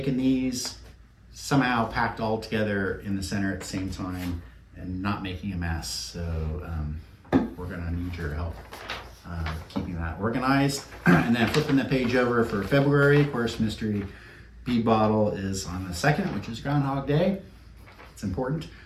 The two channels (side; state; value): both; identical; correlation 1.00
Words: these somehow packed all together in the center at the same time and not making a mess. So we're going to need your help keeping that organized. And then flipping the page over for February, of course, mystery bead bottle is on the 2nd, which is Groundhog Day. It's important.